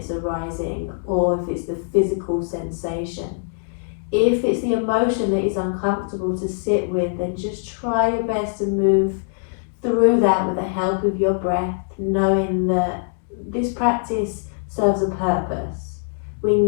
arising or if it's the physical sensation. If it's the emotion that is uncomfortable to sit with, then just try your best to move through that with the help of your breath, knowing that this practice serves a purpose. We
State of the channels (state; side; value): silent; right; digital silence